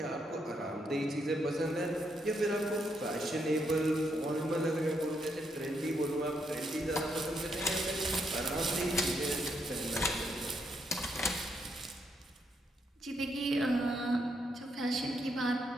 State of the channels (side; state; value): both; normal; correlation 0.77